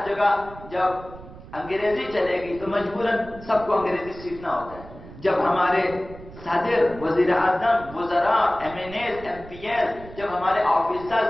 جگہ جب انگریزی چلے گی تو مجبوراً سب کو انگریزی سیکھنا ہوتا ہے. جب ہمارے صدر، وزیر اعظم، وزراء، M N As, M P L, جب ہمارے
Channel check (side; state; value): right; noise; rumble, 16 dB below the sound